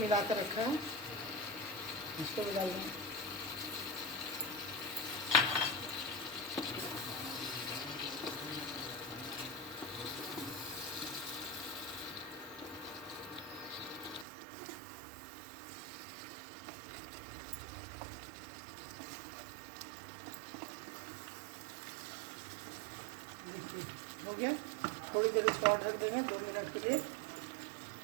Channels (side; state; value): left; drops out; at 14.2 s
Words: मिला कर रखा है इसको भी डाल देंगे। देखिए हो गया। थोड़ी देर इसको और रख देंगे 2 मिनट के लिए।